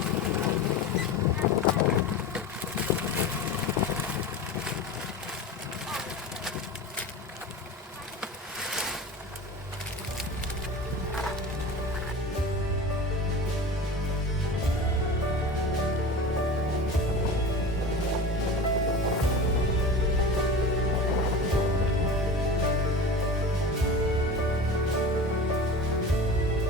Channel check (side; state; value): both; normal; correlation 0.32